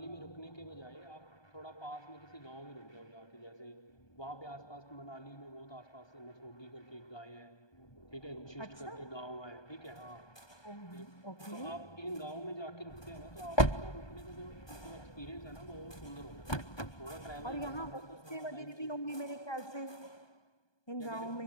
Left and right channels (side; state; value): right; late; 1.2 ms